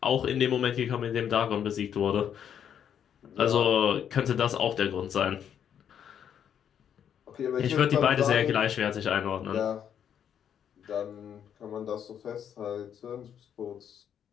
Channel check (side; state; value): right; quieter; 8.9 dB